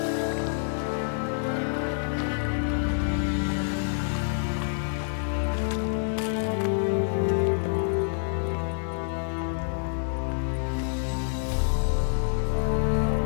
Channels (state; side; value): silent; right; digital silence